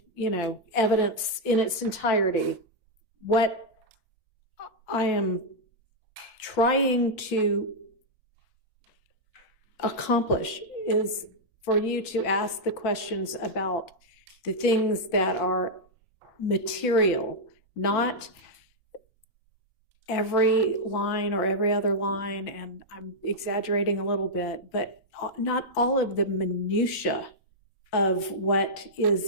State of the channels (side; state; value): right; late; 4.6 ms